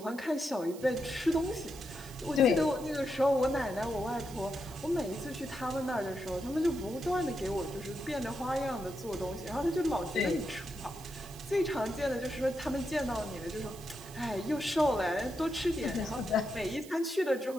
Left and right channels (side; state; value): right; noise; hiss, 18 dB below the sound